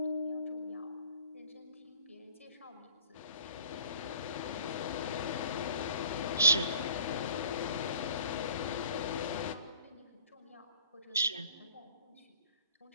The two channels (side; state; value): both; inverted; correlation -0.49